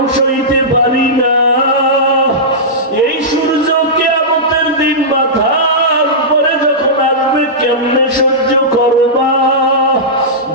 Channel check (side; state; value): both; normal; correlation -0.14